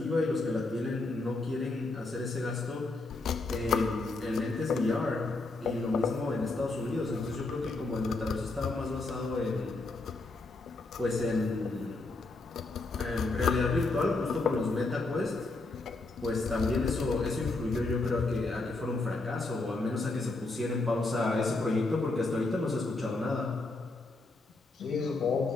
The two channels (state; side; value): quieter; right; 3.3 dB